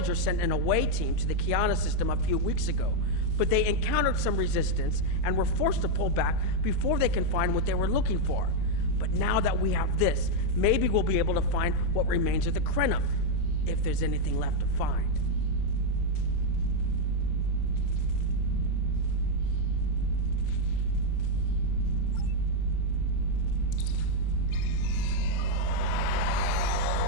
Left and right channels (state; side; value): different; both; correlation 0.00